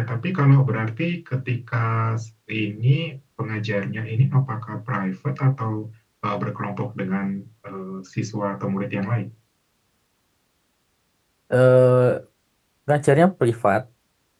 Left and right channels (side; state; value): both; identical; correlation 1.00